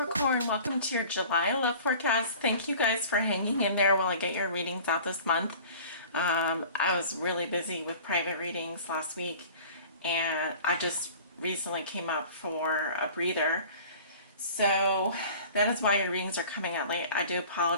Welcome to your July love forecast. Thank you guys for hanging in there while I get your readings out this month. I was really busy with private readings last week, and I just recently came up for a breather. So that is why your readings are coming out late. I do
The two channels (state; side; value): inverted; both; correlation -0.44